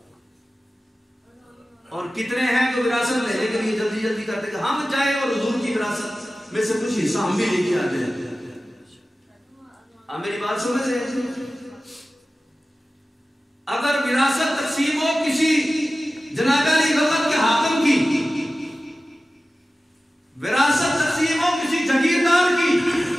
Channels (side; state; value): both; normal; correlation 0.95